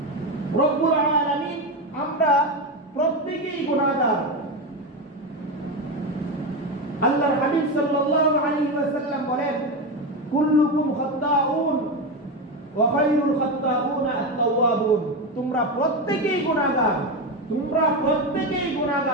রব্বুল আলামিন, আমরা প্রত্যেকেই গুনাহগার। আল্লাহর হাবিব সাল্লাল্লাহু আলাইহি ওয়াসাল্লাম বলেন, কুল্লুকুম খাত্তাউন ওয়া খায়রুল খাত্তাউনা আত-তাওয়াবুন। তোমরা প্রত্যেকেই গুনাহগার, তোমরা প্রত্যেকেই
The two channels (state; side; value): normal; both; correlation 0.15